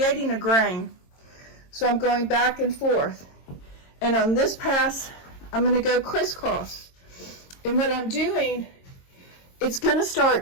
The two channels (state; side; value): late; right; 22 ms